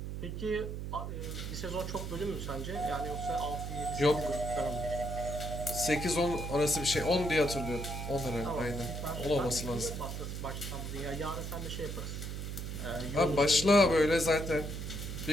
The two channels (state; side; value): noise; right; hum, 5 dB below the sound